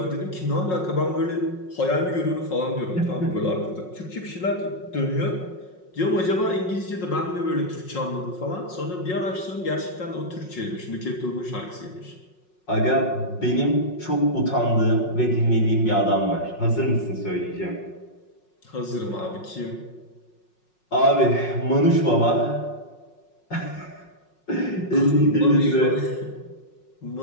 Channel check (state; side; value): late; right; 5.5 ms